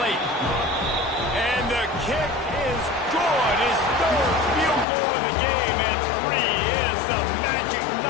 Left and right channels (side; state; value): right; drops out; at 4.9 s